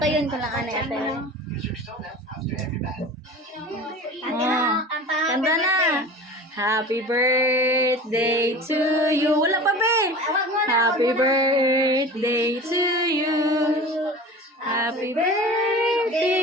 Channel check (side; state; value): both; normal; correlation 0.37